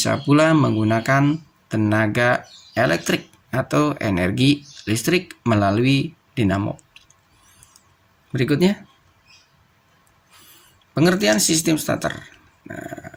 pula menggunakan tenaga elektrik atau energi listrik melalui dinamo. Berikutnya, pengertian sistem starter. Nah,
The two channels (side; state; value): both; identical; correlation 1.00